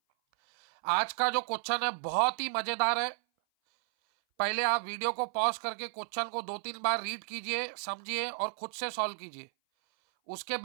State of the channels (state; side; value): silent; left; 56 dB below the other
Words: आज का जो क्वेश्चन है बहुत ही मजेदार है, पहले आप वीडियो को पॉज करके क्वेश्चन को 2-3 बार रीड कीजिए, समझिए और खुद से सॉल्व कीजिए, उसके